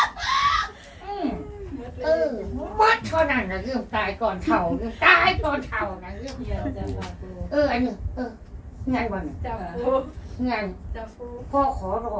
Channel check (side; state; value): both; identical; correlation 1.00